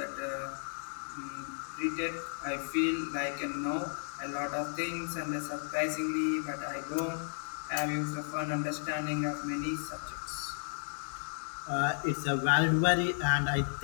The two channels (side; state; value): right; silent; digital silence